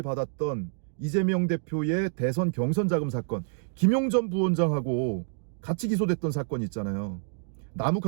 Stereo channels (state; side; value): silent; left; digital silence